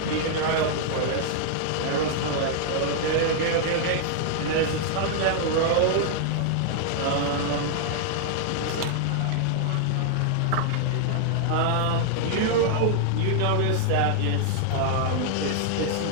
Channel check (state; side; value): different; both; correlation -0.01